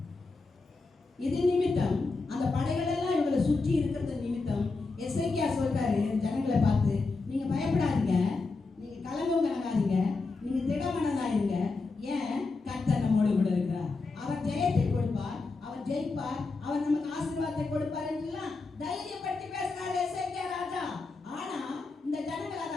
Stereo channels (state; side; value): quieter; right; 3.8 dB